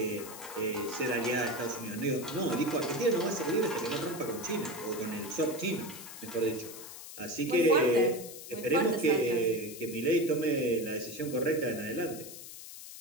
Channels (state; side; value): noise; left; hiss, 13 dB below the sound